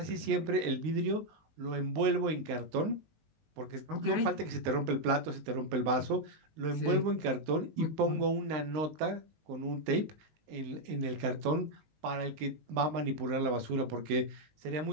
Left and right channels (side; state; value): left; late; 19 ms